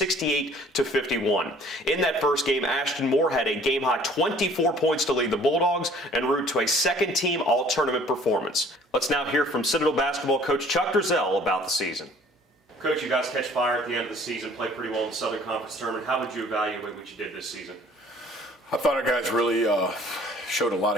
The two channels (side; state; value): both; normal; correlation 0.54